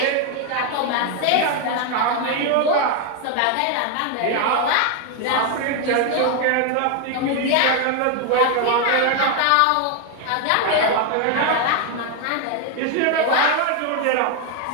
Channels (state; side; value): different; both; correlation 0.01